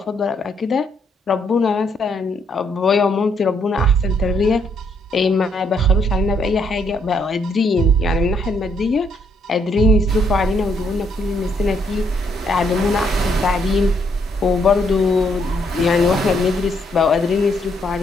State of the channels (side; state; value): both; normal; correlation 0.72